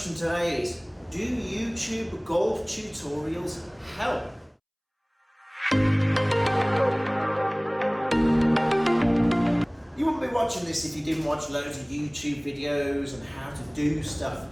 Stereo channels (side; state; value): both; identical; correlation 1.00